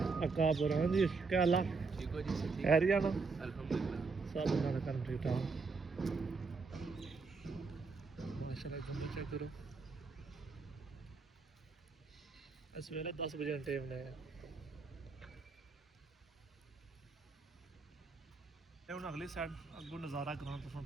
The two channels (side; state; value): left; quieter; 4.4 dB